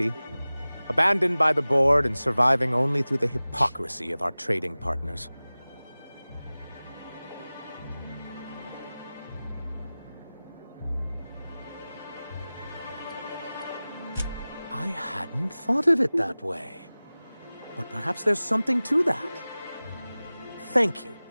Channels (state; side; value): inverted; both; correlation -0.98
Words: abandoned by the board and surviving only through the hypocrisy of our trading partners. I hadn't thought of it that way. But perhaps there's something to that. Thank you